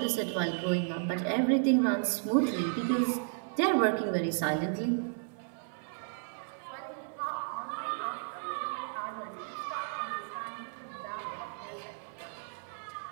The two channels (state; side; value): silent; left; 55 dB below the other